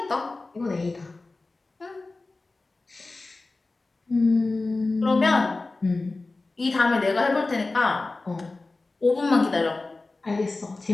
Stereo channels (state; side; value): quieter; right; 3.4 dB